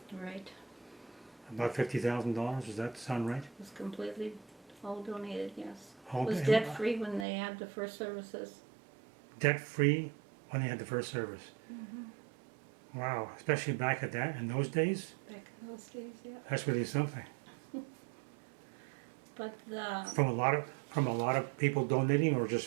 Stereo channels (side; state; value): left; drops out; at 7.2 s